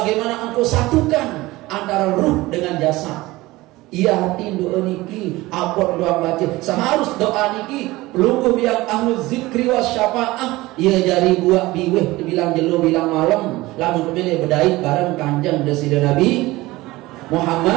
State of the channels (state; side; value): quieter; left; 19.4 dB